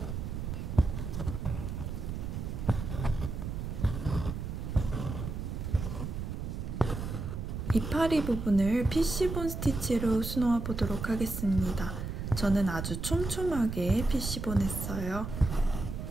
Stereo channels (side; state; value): right; noise; rumble, 5 dB below the sound